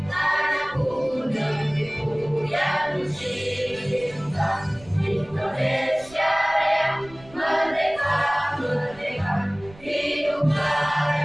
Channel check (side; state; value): right; noise; rumble, 22 dB below the sound